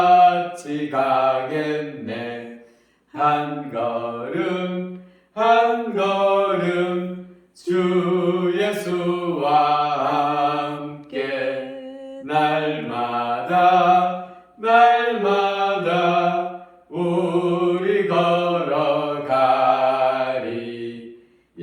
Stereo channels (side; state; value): both; identical; correlation 1.00